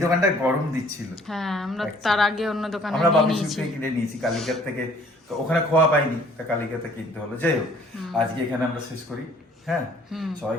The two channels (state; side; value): normal; both; correlation 0.57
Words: দোকানটায় গরম দিচ্ছিল। হ্যাঁ, আমরা তার আগে অন্য দোকানে আমরা নিয়ে বাবু নিয়েছি। থেকে কিনে নিয়েছি কালিকার থেকে, তো ওখানে খোয়া পাইনি, তা কালিকাতে কিনতে হলো। যাই হোক, আজকে এখানে আমরা শেষ করি। হ্যাঁ, সবাই